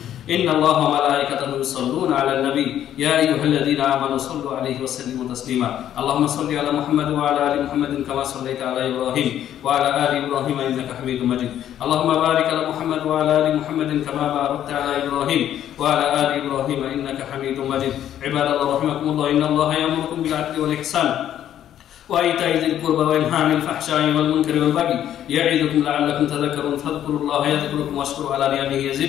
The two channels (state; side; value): quieter; right; 11.0 dB